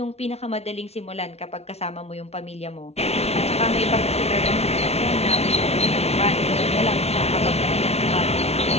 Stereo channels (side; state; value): right; late; 0.31 ms